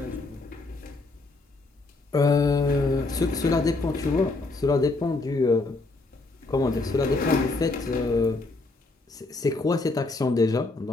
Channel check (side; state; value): right; quieter; 3.3 dB